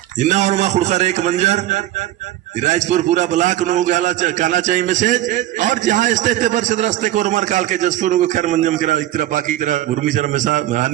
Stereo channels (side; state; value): left; quieter; 14.1 dB